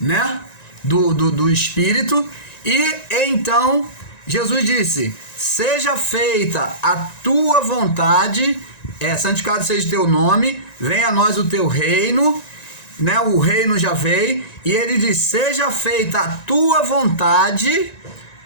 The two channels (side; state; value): right; late; 1.9 ms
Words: do Espírito. E então Jesus disse: seja feita a tua vontade, santificado seja o teu nome, venha a nós o teu reino, né? O reino já veio, e ele diz: seja feita a tua vontade